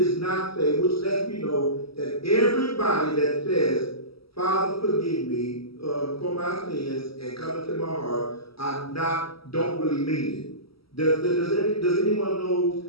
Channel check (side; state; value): right; late; 0.75 ms